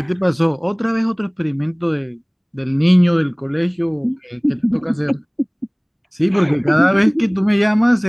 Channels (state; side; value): identical; both; correlation 1.00